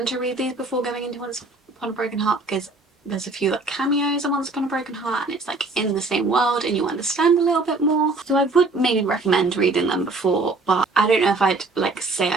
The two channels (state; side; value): quieter; left; 3.4 dB